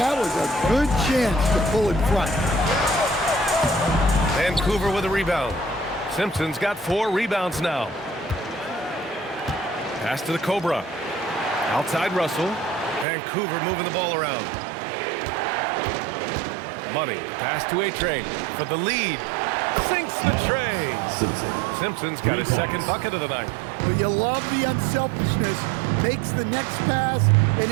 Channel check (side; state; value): left; drops out; at 13.1 s